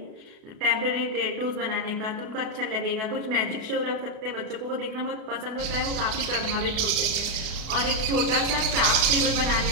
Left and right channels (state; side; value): late; left; 33 ms